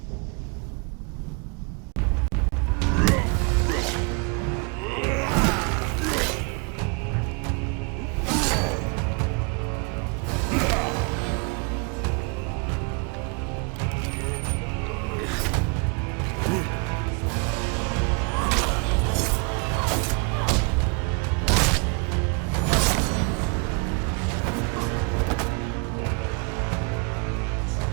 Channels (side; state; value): left; quieter; 33.7 dB